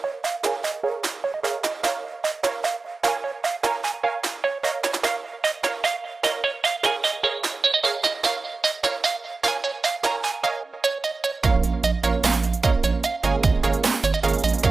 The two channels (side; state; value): left; quieter; 3.5 dB